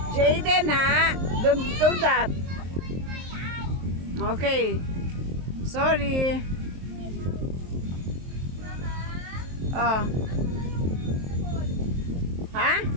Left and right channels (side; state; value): left; late; 23 ms